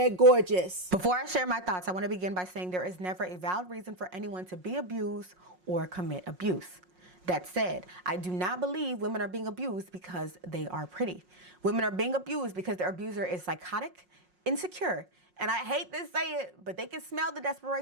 gorgeous. Before I share my thoughts, I want to begin by saying there is never a valid reason for anyone to be abused or commit abuse. That said, I do not believe women are being abused because they are pretty. Women are being abused because their abuser is psychotic, insecure, and I hate to say it, but they can smell the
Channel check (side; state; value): left; late; 5.5 ms